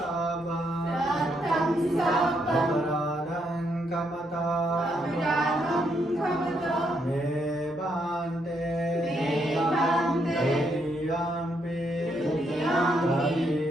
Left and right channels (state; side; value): normal; both; correlation 0.76